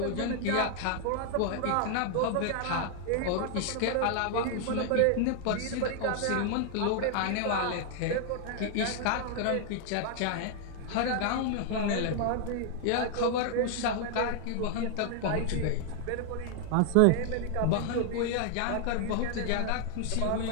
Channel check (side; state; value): both; different; correlation 0.00